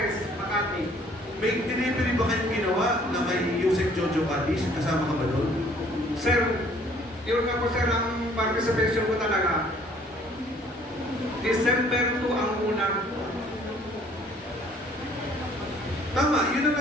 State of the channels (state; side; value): normal; both; correlation 0.58